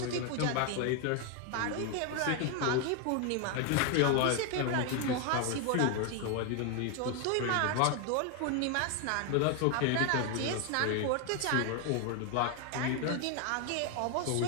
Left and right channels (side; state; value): both; different; correlation 0.01